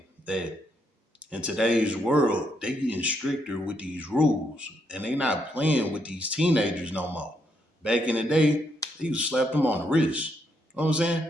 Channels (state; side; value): normal; both; correlation 0.77